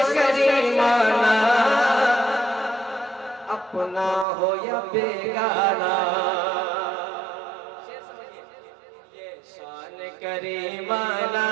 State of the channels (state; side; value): drops out; left; at 4.2 s